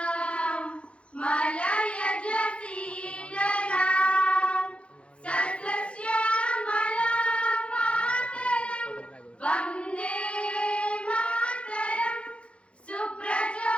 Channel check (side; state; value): right; late; 0.060 ms